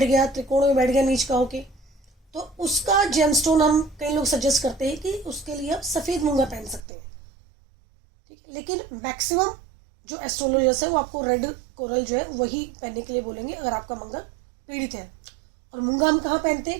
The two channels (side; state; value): left; drops out; at 6.8 s